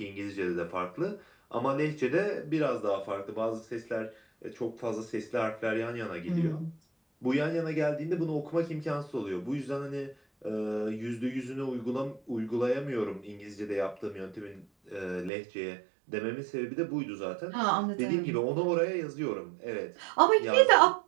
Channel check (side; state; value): left; drops out; at 15.3 s